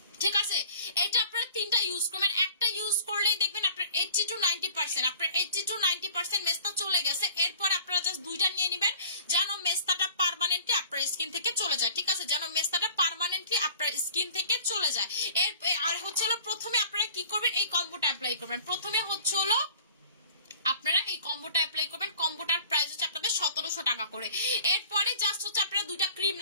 ঠিক আছে? এটা আপনারা 3টা ইউজ করবেন। একটা ইউজ করলেই দেখবেন আপনার 80 to 90% মেস্তা চলে গেছে। এরপর আপনারা জাস্ট 2টা নিয়ে নেবেন যেন মেস্তাটা পার্মানেন্টলি আপনার স্কিন থেকে চলে যায়, ঠিক আছে? যেন মেস্তাটা পার্মানেন্টলি আপনার স্কিন থেকে চলে যায়। আর হচ্ছে হলো প্রথমে আপনারা কি করবেন, এই কম্বোটা অ্যাপ্লাই করবেন। প্রথমে হচ্ছে হলো আপনারা এই কম্বোটা অ্যাপ্লাই করবেন। কম্বোটার প্রাইস হচ্ছে আপনাদের 1700 টাকা করে। এরপরে জাস্ট হচ্ছে আপনারা 2টা ক্রিম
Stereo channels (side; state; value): both; inverted; correlation -0.47